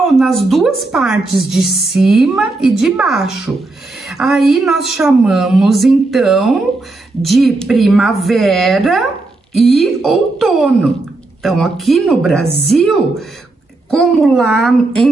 nas duas partes, de cima e de baixo. Aí nós chamamos então de primavera e outono. Então, aqui no Brasil, como lá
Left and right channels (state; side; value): quieter; left; 3.2 dB